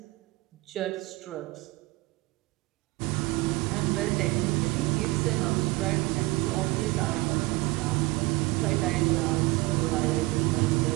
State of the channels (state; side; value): quieter; left; 21.7 dB